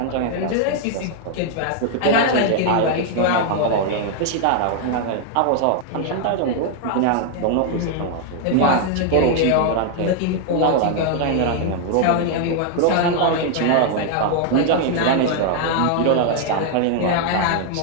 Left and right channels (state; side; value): different; both; correlation 0.00